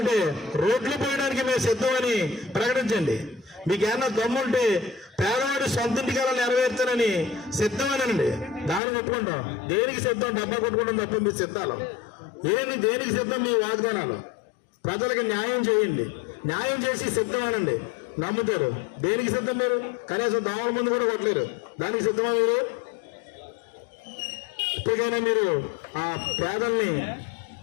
రోడ్లు పోయడానికి మేము సిద్ధమని ప్రకటించండి. మీకేమన్నా దమ్ముంటే పేదవాడి సొంత ఇంటికాల నెరవేర్చానని సిద్ధమేనండి. దాన్ని కొట్టుకుంటాం. దేనికి సిద్ధం? డబ్బా కొట్టుకుంటాం తప్ప మీ సిద్ధాలు దేనికి సిద్ధం? మీ వాగ్దానాలు ప్రజలకు న్యాయం చేయండి. న్యాయం చేసి సిద్ధమేనండి. నమ్ముతారు. దేనికి సిద్ధం? మీరు కనీసం దోమల ముందు కూడా కొట్టలేరు. దానికి సిద్ధమా మీరు? ఇప్పటికైనా మీరు ఆ పేదల్ని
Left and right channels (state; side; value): drops out; right; at 8.8 s